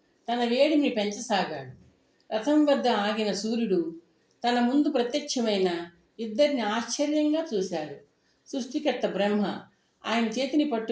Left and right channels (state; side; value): identical; both; correlation 1.00